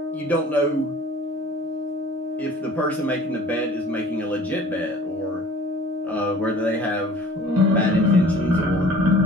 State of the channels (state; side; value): normal; both; correlation 0.48